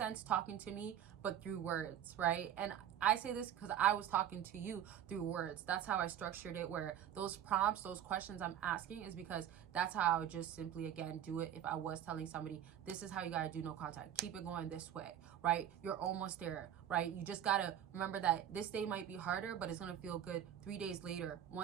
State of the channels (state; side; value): quieter; left; 10.3 dB